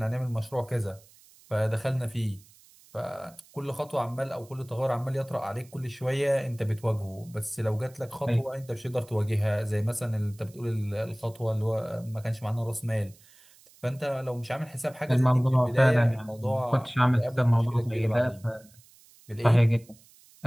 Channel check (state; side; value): noise; right; hiss, 26 dB below the sound